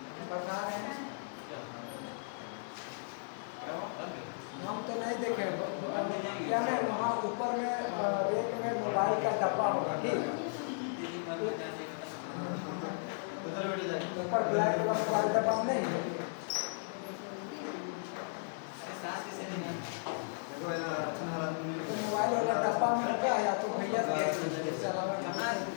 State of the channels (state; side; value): silent; right; digital silence